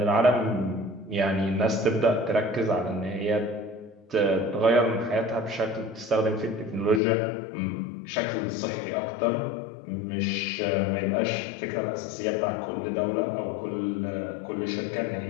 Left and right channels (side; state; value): right; drops out; at 7.0 s